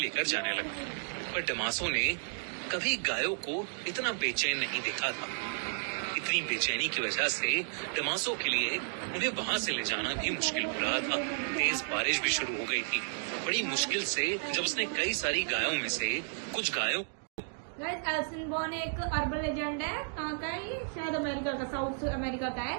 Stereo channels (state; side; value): silent; left; digital silence